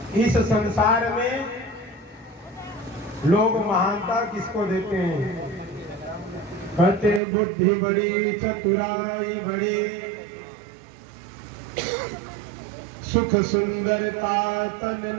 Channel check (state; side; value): drops out; left; at 7.2 s